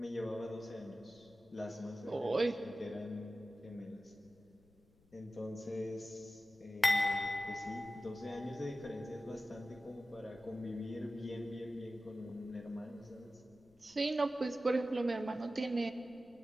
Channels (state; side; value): noise; left; rumble, 30 dB below the sound